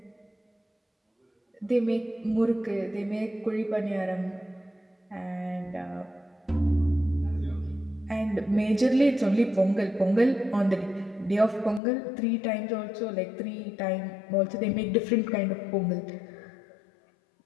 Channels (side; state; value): right; drops out; at 11.8 s